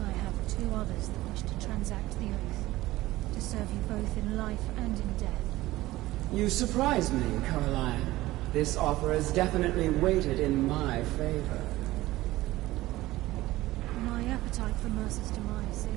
have two others that wish to transact the oath, to serve you both in life and in death. You surprise me, Carlia. This offer is definitely weighted in my favor. My appetite for Mercer's demise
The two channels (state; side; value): quieter; left; 17.5 dB